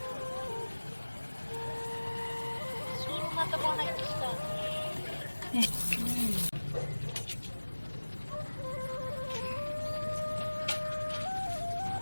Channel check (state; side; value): inverted; both; correlation -1.00